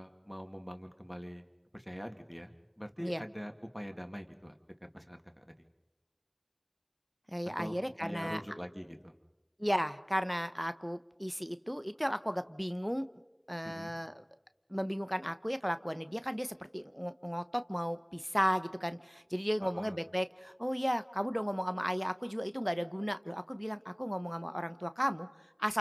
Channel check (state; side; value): identical; both; correlation 1.00